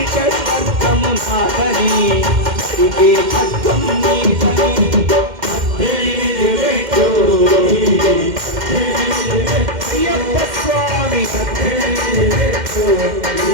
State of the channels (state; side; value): late; left; 2.1 ms